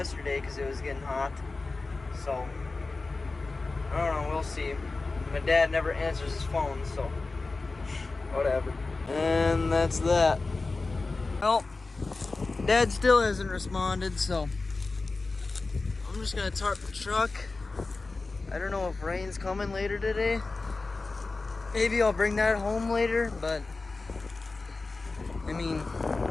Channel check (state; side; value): quieter; right; 3.6 dB